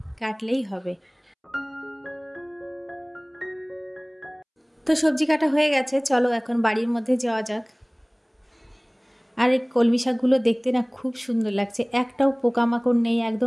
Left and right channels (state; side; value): identical; both; correlation 1.00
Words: কাটলেই হবে। তো সবজি কাটা হয়ে গেছে, চলো এখন বাড়ির মধ্যে যাওয়া যাক। আর এই কলমি শাকগুলো দেখতে না খুব সুন্দর লাগছে, একটাও পোকামাকড় নেই,